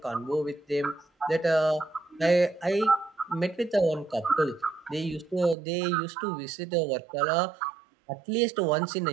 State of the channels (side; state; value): left; drops out; at 5.6 s